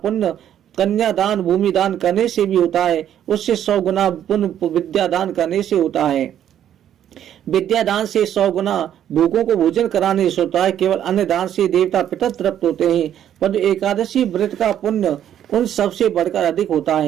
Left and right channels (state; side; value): quieter; left; 10.4 dB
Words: कन्या दान भूमि दान करने से भी होता है, उससे 100 गुना पुण्य विद्या दान करने से होता है। विद्या दान से 100 गुना भूखों को भोजन कराने से होता है। केवल अन्न दान से देवता पितर तृप्त होते हैं, पर एकादशी व्रत का पुण्य उन सबसे बढ़कर अधिक होता